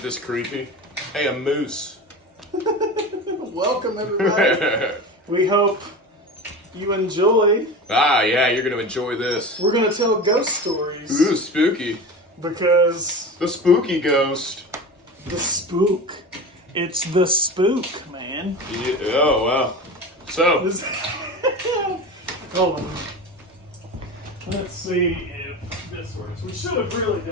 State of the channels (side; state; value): both; normal; correlation 0.29